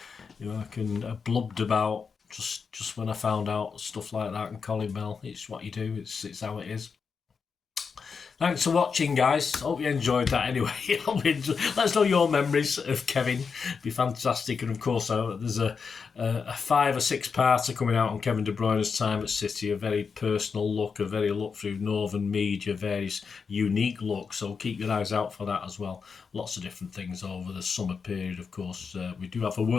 who I can blubbed about just when I found out stuff like that. And Colin Bell, it's what you do. It's how it is. Thanks for watching, guys. Hope you enjoyed that anyway. Let us know your memories of Kevin. It'd be fantastic. And of course, there's a 5 or 6 parter coming out on Kevin De Bruyne's time at City. A very personal look, a very look through Northern media, various unique looks. So keep your eyes out for that as well. Lots of different things over the summer period, of course. We do have a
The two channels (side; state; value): right; quieter; 5.6 dB